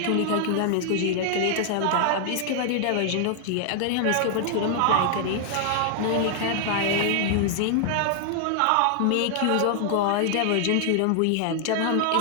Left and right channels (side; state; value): both; different; correlation 0.00